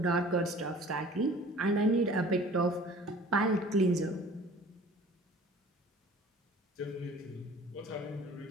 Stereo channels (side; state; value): both; normal; correlation 0.47